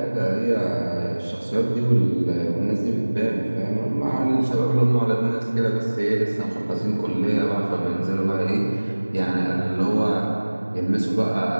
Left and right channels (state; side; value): inverted; both; correlation -1.00